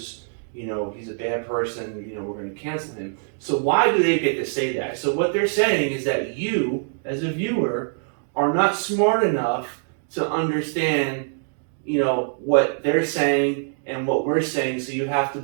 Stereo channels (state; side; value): silent; left; digital silence